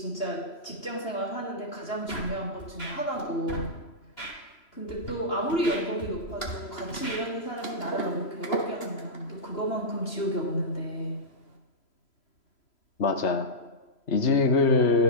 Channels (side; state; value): right; late; 3.0 ms